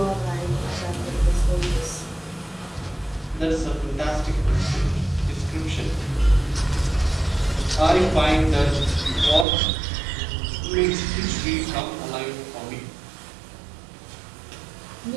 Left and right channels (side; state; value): left; drops out; at 9.5 s